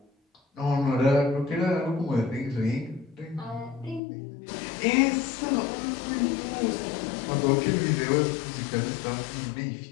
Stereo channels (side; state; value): right; drops out; at 4.0 s